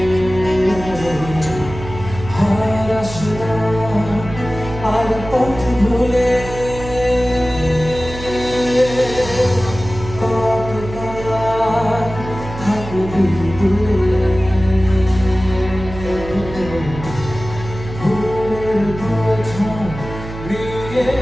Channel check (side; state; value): right; noise; hum, 11 dB below the sound